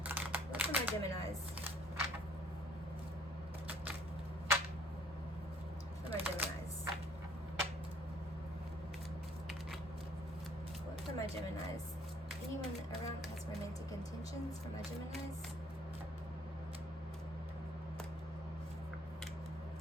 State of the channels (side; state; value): both; normal; correlation 0.59